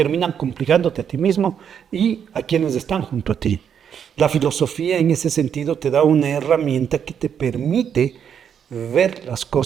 complicándote a ti mismo y a quienes están junto a ti. La filosofía en ese sentido te da una herramienta que te permite ver las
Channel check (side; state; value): left; quieter; 8.1 dB